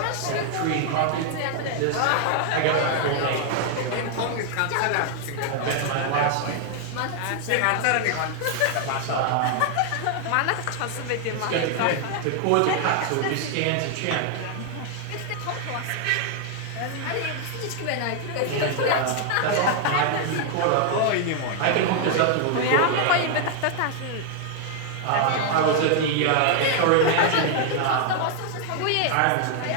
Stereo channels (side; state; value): both; different; correlation 0.00